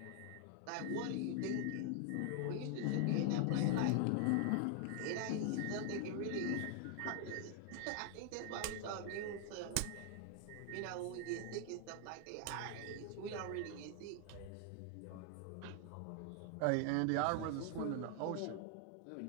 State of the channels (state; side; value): different; both; correlation 0.00